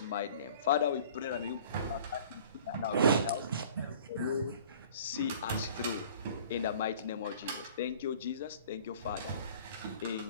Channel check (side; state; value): both; inverted; correlation -0.48